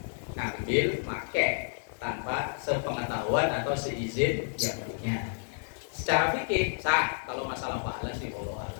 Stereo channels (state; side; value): silent; right; digital silence